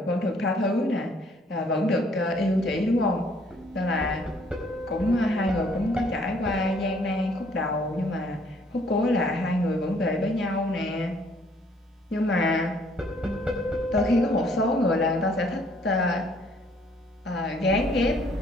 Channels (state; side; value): normal; both; correlation 0.63